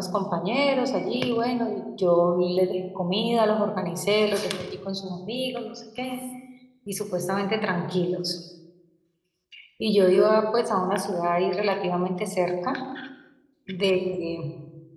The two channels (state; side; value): identical; both; correlation 1.00